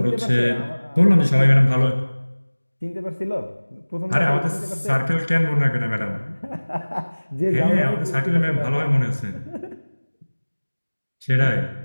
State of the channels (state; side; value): inverted; both; correlation -1.00